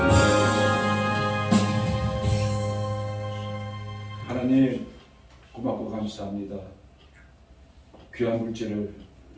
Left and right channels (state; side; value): identical; both; correlation 1.00